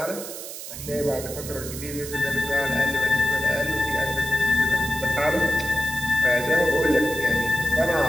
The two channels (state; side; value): noise; right; hiss, 10 dB below the sound